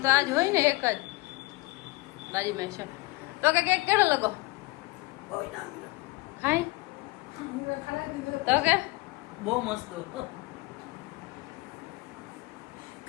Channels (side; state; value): right; quieter; 22.1 dB